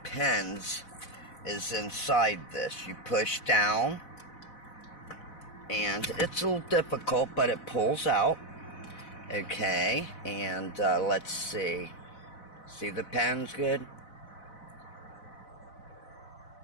pins is inside this. You push down, and it's a little difficult, but it pulls out. Okay, and let's see. See the pins good?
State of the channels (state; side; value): late; right; 4.0 ms